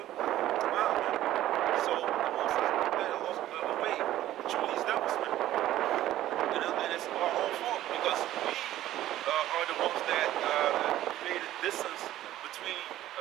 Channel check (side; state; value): left; quieter; 13.8 dB